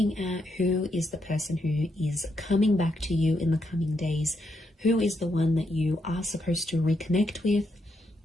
at who is the person who is coming back to you in the coming days. Who is the one that you are supposed to reconnect with,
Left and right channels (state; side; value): normal; both; correlation 0.79